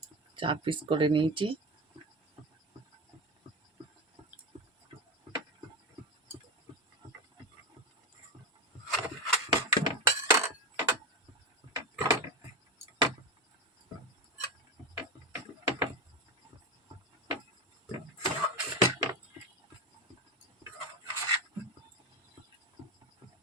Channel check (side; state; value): both; normal; correlation 0.18